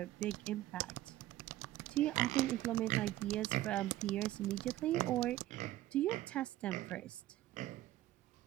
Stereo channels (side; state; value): left; quieter; 14.9 dB